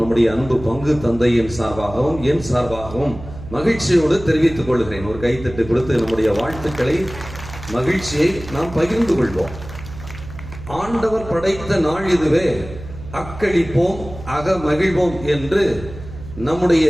அன்பு பங்கு தந்தையின் சார்பாகவும் என் சார்பாகவும் மகிழ்ச்சியோடு தெரிவித்துக் கொள்கிறேன். ஒரு கைத்தட்டு கொடுத்து நம்முடைய வாழ்த்துக்களை, மகிழ்ச்சியை நாம் பகிர்ந்து கொள்வோம். ஆண்டவர் படைத்த நாள் இதுவே, அக்களிப்போம் அக மகிழ்வோம் என்று நம்முடைய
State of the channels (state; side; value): noise; right; hum, 13 dB below the sound